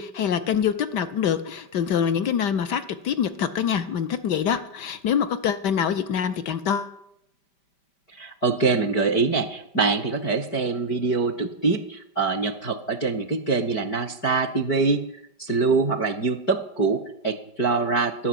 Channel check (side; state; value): right; late; 5.1 ms